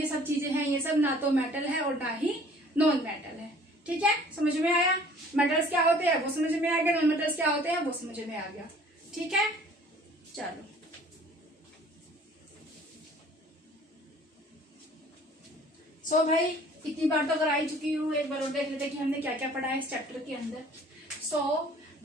सब चीजें हैं, ये सब ना तो मेटल है और ना ही नॉन मेटल है। ठीक है, समझ में आया? मेटल्स क्या होते हैं वो समझ में आ गया, नॉन मेटल्स क्या होते हैं वो समझ में आ गया। ठीक है, चलो सो भाई इतनी बार तो अगर आई चुकी हूँ, एक बार और देख लेते कि हमने क्या क्या पढ़ा है इस चैप्टर के अंदर। So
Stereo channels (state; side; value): normal; both; correlation 0.52